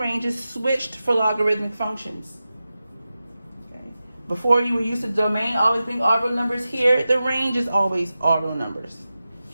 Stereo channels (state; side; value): inverted; both; correlation -0.94